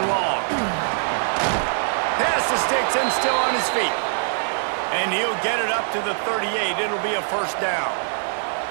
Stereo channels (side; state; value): left; silent; digital silence